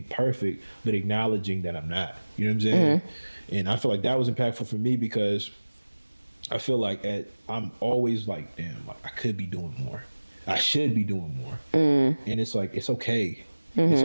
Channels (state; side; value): inverted; both; correlation -1.00